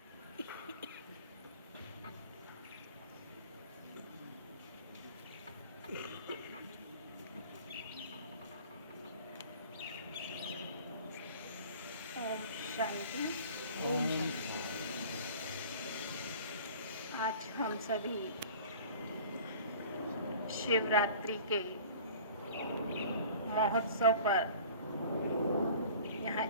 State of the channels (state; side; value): inverted; both; correlation -0.46